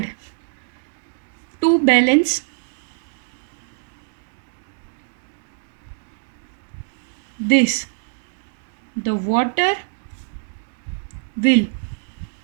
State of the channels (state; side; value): silent; left; 63 dB below the other